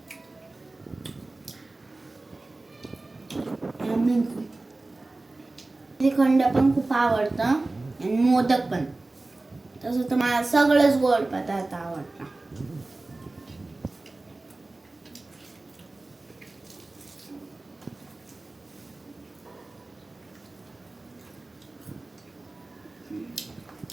श्रीखंड पण खूप आवडतं आणि मोदक पण. तसं तर मला सगळंच गोड पदार्थ आवडतात.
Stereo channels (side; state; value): left; quieter; 3.1 dB